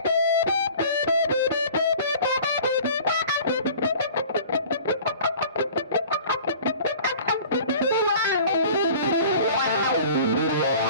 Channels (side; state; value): both; inverted; correlation -0.45